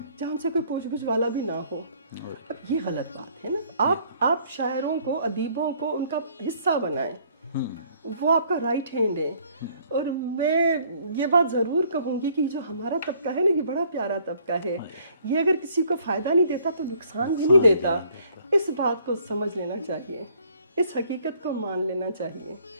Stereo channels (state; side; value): inverted; both; correlation -0.61